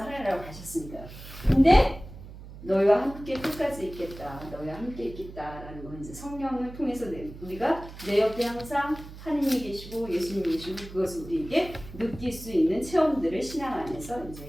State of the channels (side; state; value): right; noise; hum, 15 dB below the sound